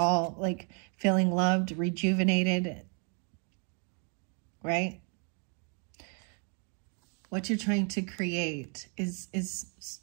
like feeling loved, rejuvenated, right? What you're trying to create is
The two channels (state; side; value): quieter; left; 38.3 dB